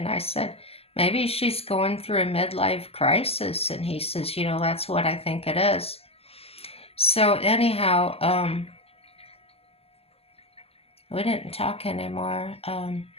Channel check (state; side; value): late; right; 0.28 ms